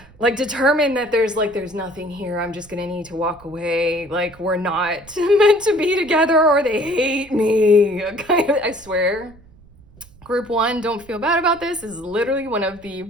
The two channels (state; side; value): noise; right; rumble, 24 dB below the sound